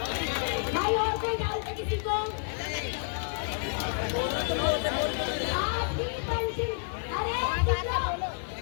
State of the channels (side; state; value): right; silent; 58 dB below the other